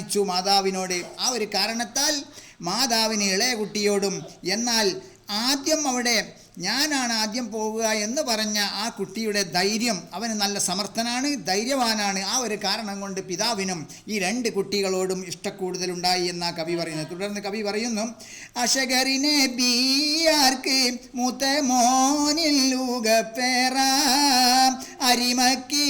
മാതാവിനോട്. ആ ഒരു കാരണത്താൽ മാതാവിന് ഇളയ കുട്ടിയോടും, എന്നാൽ ആദ്യം അവിടെ ഞാനാണ് ആദ്യം പോവുക എന്ന് പറഞ്ഞ ആ കുട്ടിയുടെ ധൈര്യം, അവന് നല്ല സമർത്ഥനാണ്, ധൈര്യവാനാണ്. ആ ഒരു കാരണം കൊണ്ട് പിതാവിനും ഈ രണ്ട് കുട്ടികളോടും ഇഷ്ടക്കൂടുതലുണ്ടായി എന്നാ കവി പറയുന്നത്. തുടർന്ന് കവി പറയുന്നു, അശഗറിനെ ബിയാർക്ക് മൂത്ത മോനില്ലുകപ്പേറ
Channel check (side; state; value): both; identical; correlation 1.00